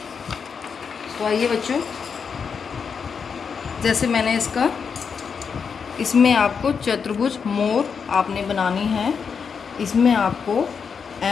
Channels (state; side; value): quieter; right; 6.1 dB